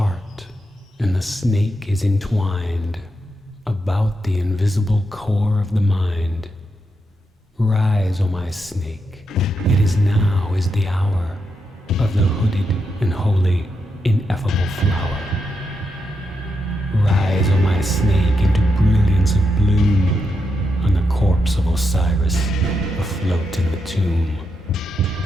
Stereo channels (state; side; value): normal; both; correlation 0.84